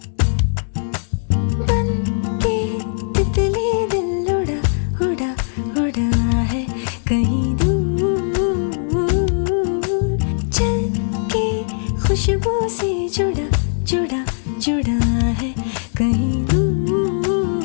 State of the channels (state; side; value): silent; right; digital silence